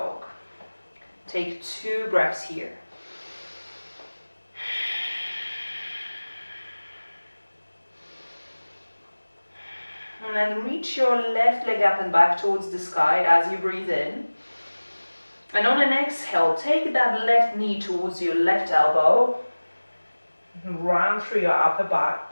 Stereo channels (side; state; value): both; inverted; correlation -1.00